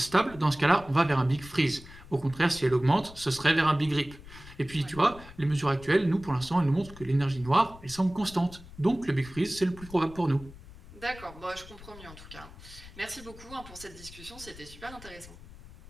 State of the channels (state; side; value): noise; left; rumble, 18 dB below the sound